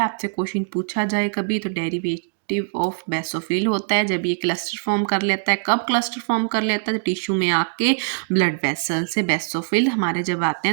आपसे क्वेश्चन पूछा जाए कभी, तो डेरिवेटिव ऑफ बेसोफिल होता है। जब ये क्लस्टर फॉर्म कर लेता है, कब क्लस्टर फॉर्म कर लेता है, तो टिश्यू में आके ब्लड वेसल से बेसोफिल हमारे जब आते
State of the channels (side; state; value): left; silent; digital silence